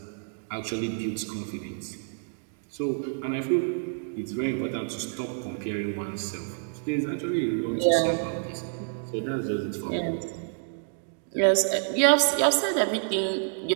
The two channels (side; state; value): left; silent; 59 dB below the other